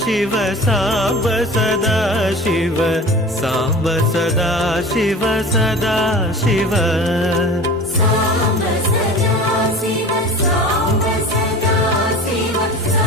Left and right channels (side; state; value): both; normal; correlation 0.38